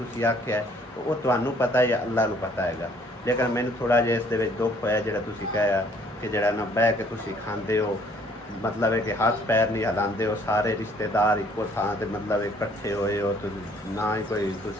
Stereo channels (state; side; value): normal; both; correlation 0.61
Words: आख्या है ਉਹ ਤੁਹਾਨੂੰ ਪਤਾ ਜਾਂ ਅੱਲਾ ਨੂੰ ਪਤਾ ਹੈਗਾ। ਲੇਕਿਨ ਮੈਨੂੰ ਥੋੜ੍ਹਾ ਜਿਹਾ ਇਸ ਦੇ ਵਿੱਚ ਦੁੱਖ ਹੋਇਆ ਜਿਹੜਾ ਤੁਸੀਂ ਕਿਹਾ ਕਿ ਜਿਹੜਾ ਨਾ ਬਹਿ ਕੇ ਤੁਸੀਂ ਖਾਂਦੇ ਹੋ, मतलब है कि हाथ पैर नहीं हिलाते हो, सारे रिश्तेदार इको थां ते मतलब इकट्ठे होए हो, तो ना ही कोई